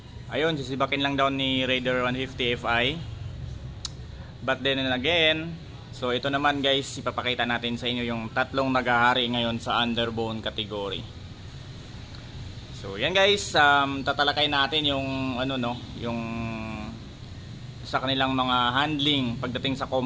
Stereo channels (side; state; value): both; identical; correlation 1.00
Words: ayun, sisibakin lang daw ni Raider 150 Fi. But then again, so ito naman guys, ipapakita natin sa inyo yung tatlong naghahari ngayon sa underbone category. So yan guys, tatalakay natin yung yung sa kanilang mga handling pagdating sa